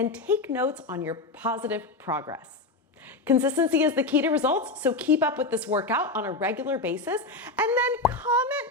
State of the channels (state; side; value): quieter; right; 3.4 dB